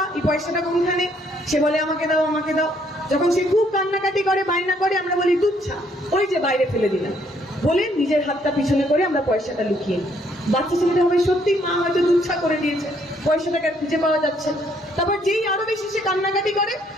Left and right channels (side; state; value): both; normal; correlation 0.68